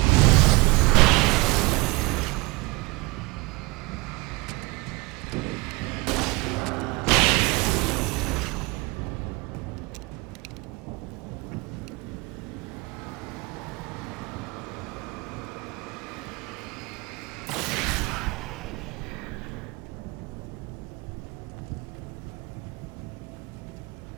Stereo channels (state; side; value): quieter; left; 24.7 dB